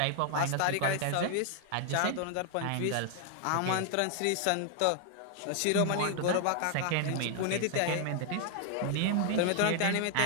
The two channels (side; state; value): both; different; correlation 0.00